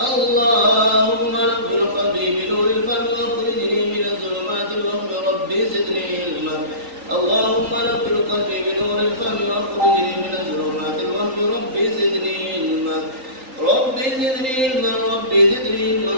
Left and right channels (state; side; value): late; left; 3.8 ms